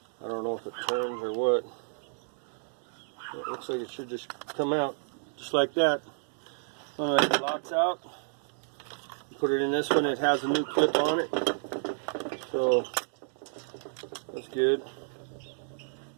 I don't know if it turns or what. It looks like it should just come out just like that. When it locks out, put it in this one. It has a new clip on it, so that's good.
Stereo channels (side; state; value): left; silent; digital silence